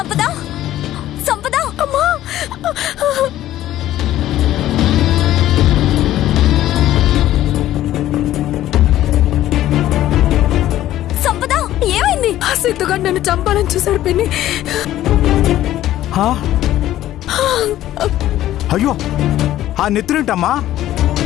సంపద, అమ్మా, సంపద ఏమైంది? ఆ సిద్ధుగాడు నన్ను చంపాలని చూశాడు పిన్ని. అయ్యో, ఆ నెత్తురేంటమ్మా?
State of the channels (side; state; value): right; quieter; 13.6 dB